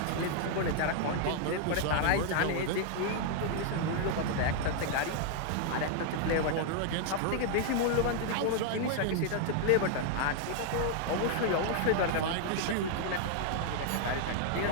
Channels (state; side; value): different; both; correlation 0.00